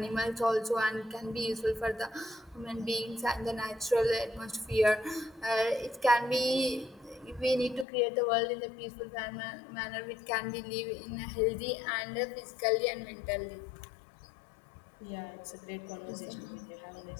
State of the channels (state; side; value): drops out; right; at 7.9 s